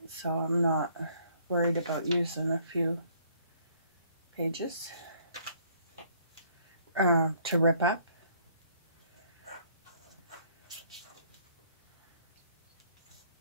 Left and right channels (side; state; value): both; inverted; correlation -0.63